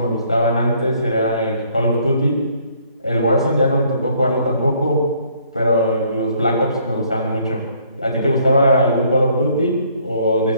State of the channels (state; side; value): inverted; both; correlation -0.64